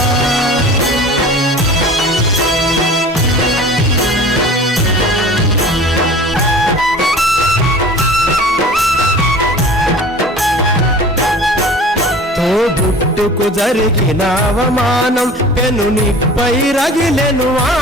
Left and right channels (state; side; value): normal; both; correlation 0.42